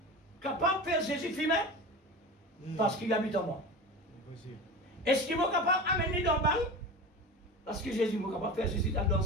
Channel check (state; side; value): normal; both; correlation 0.30